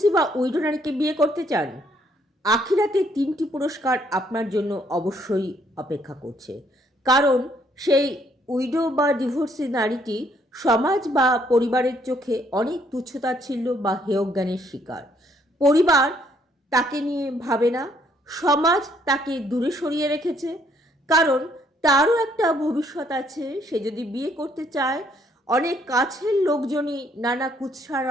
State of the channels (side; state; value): both; normal; correlation 0.68